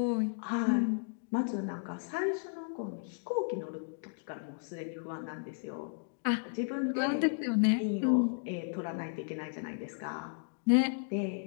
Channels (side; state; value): right; silent; digital silence